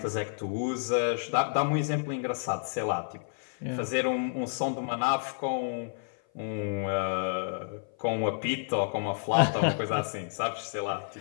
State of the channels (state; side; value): silent; right; 55 dB below the other